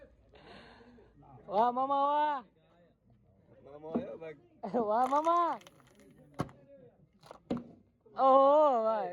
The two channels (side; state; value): both; identical; correlation 1.00